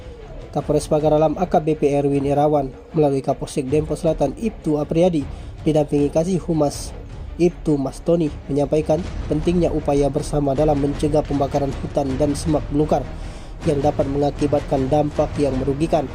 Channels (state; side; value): identical; both; correlation 1.00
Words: Kapolres Pagar Alam AKBP Erwin Irawan melalui Kapolsek Dempo Selatan Ibtu Apriyadi didampingi Kasih Humas Ibtu Mas Tony menyampaikan pentingnya upaya bersama dalam mencegah pembakaran hutan dan semak belukar yang dapat mengakibatkan dampak yang merugikan